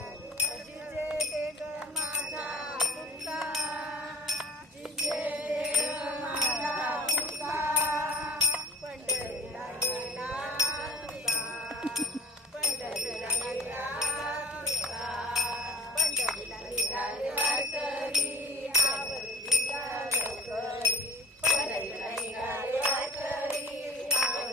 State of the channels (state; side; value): normal; both; correlation 0.39